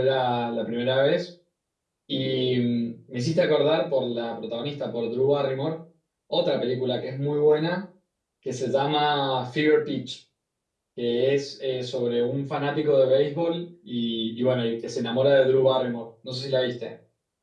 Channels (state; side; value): identical; both; correlation 1.00